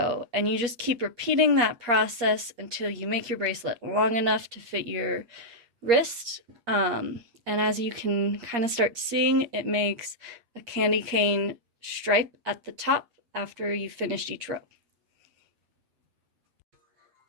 and you just keep repeating that process until you make your bracelet long enough to fit your wrist. And as you can kind of start seeing, it makes a candy cane stripe at the top after you've finished each row.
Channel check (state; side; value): late; left; 8.5 ms